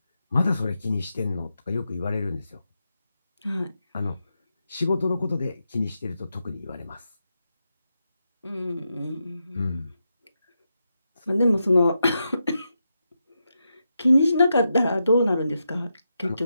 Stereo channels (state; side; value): inverted; both; correlation -0.86